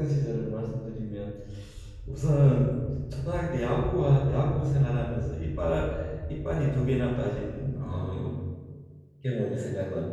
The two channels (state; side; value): identical; both; correlation 1.00